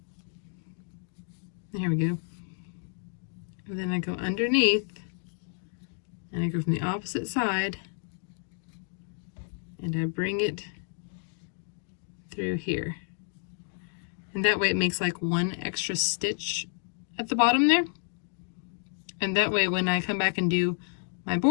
Here we go. And then I go underneath and I go from the opposite side and I bring it through here. And that way it makes like one extra stitch at the bottom there. And that way when I come back and do my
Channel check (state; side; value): silent; right; 56 dB below the other